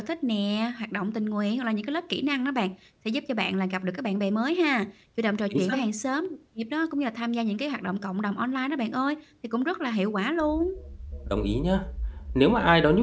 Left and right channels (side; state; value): both; identical; correlation 1.00